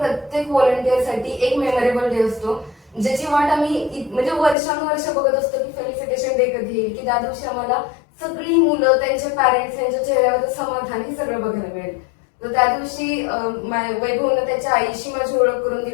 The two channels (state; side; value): drops out; right; at 4.5 s